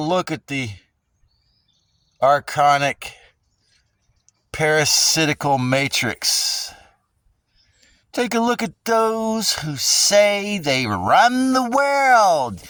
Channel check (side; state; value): both; identical; correlation 1.00